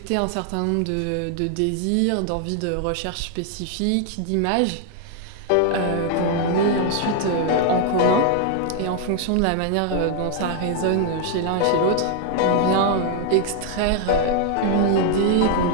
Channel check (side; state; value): both; different; correlation 0.00